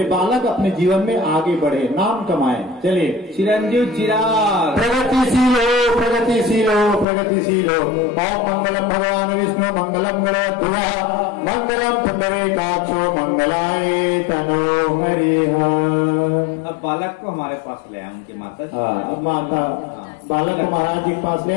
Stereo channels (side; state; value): right; drops out; at 7.1 s